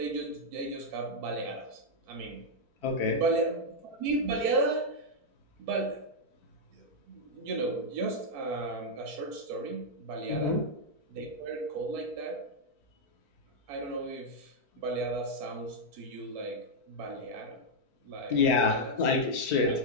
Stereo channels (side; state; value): left; late; 4.5 ms